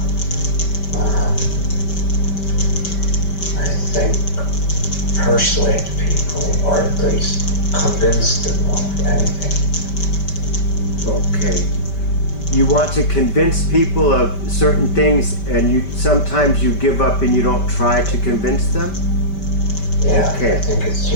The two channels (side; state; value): right; late; 5.2 ms